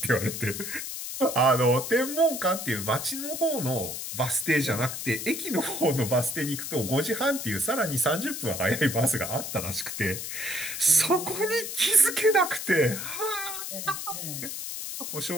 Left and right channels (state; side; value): noise; left; hiss, 6 dB below the sound